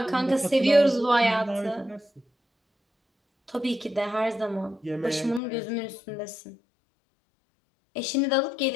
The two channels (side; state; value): right; drops out; at 5.4 s